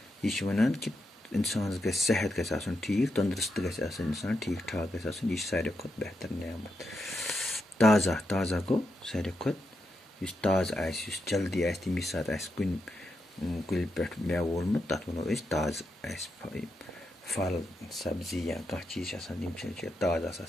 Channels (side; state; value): both; normal; correlation 0.85